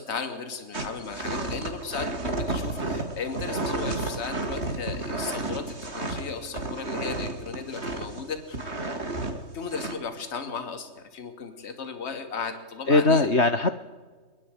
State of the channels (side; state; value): right; late; 3.2 ms